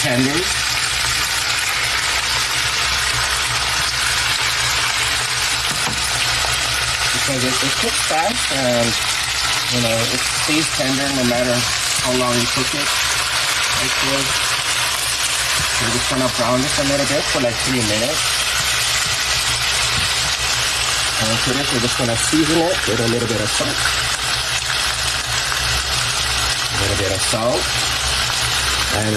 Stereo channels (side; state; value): both; identical; correlation 1.00